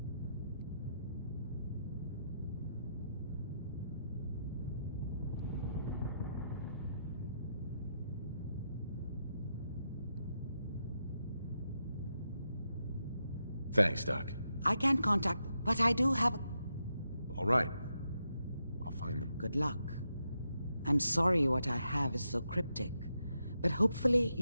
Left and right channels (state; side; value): inverted; both; correlation -0.83